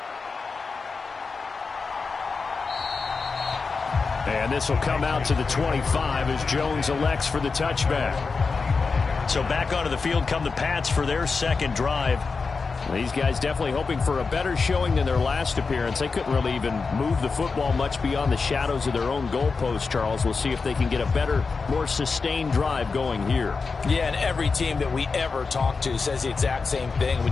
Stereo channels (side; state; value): right; quieter; 4.6 dB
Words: And this will come out to the 25 as Jones elects for the touchback. So back onto the field come the Pats for their second drive. These guys definitely hoping for a better showing than their last appearance. They couldn't really even move the football much beyond the shadows of their own goalpost, Charles. We'll see if they can get a better, more sustained drive going here. Yeah, and every team that we ever talk to says the exact same thing.